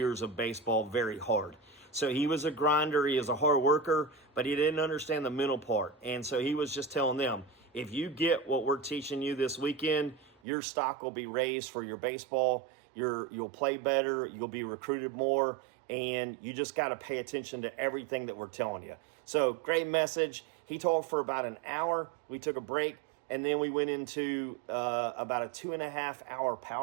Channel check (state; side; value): drops out; left; at 10.4 s